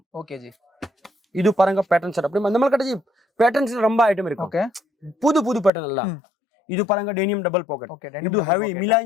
ஓகே ஜி இது பாருங்க பேட்டர்ன் செட் அப்படி நம்மகிட்ட ஜி பேட்டர்ன்ஸ் ரொம்ப ஐட்டம் இருக்கு ஓகே புது பேட்டர்ன் எல்லாம் இது பாருங்க டெனியம் டபுள் பாக்கெட் இது ஹெவி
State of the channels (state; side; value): drops out; right; at 5.7 s